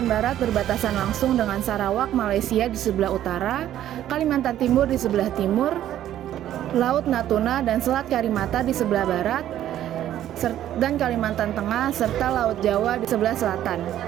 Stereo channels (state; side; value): quieter; left; 12.0 dB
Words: Barat berbatasan langsung dengan Sarawak, Malaysia di sebelah utara, Kalimantan Timur di sebelah timur, Laut Natuna dan Selat Karimata di sebelah barat, dan Kalimantan Tengah serta Laut Jawa di sebelah selatan.